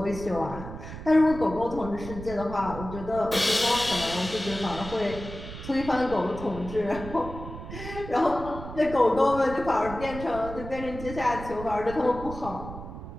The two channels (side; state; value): right; noise; rumble, 11 dB below the sound